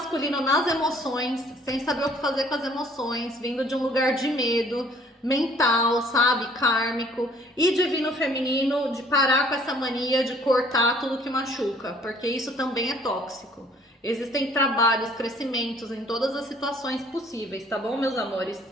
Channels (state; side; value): normal; both; correlation 0.58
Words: nas emoções, sem saber o que fazer com as emoções, vindo de um lugar de medo mental, sabe, kármico. E divino feminino de parar com essa mania de cortar tudo que machuca, porque isso também é tóxico. Existem trabalhos, crescimentos em todas as situações possíveis, tá bom, meus amores?